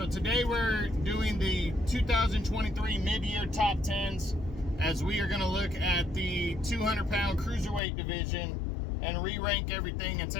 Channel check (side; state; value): right; drops out; at 7.8 s